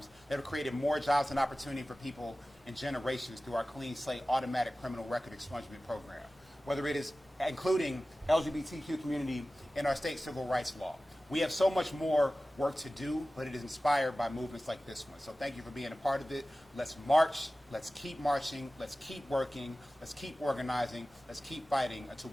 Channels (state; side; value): normal; both; correlation 0.96